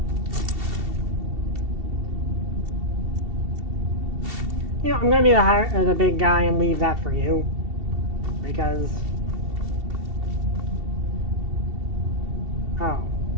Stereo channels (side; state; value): left; late; 2.7 ms